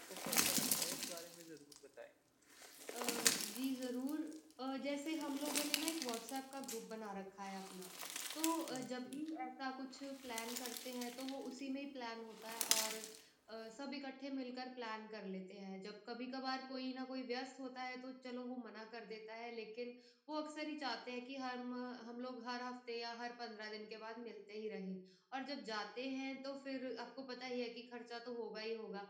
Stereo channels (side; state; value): both; identical; correlation 1.00